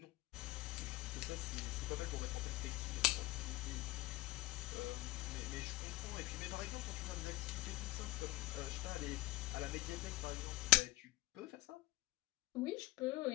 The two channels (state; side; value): quieter; right; 18.6 dB